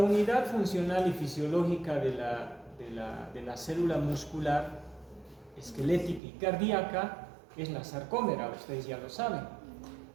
funcional y fisiológica de la célula muscular, esquelética y cardíaca es la sarcómera, ustedes ya lo saben.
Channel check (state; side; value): drops out; left; at 6.2 s